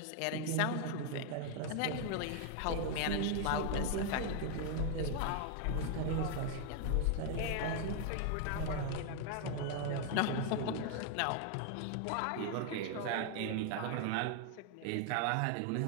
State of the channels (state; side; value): different; both; correlation 0.00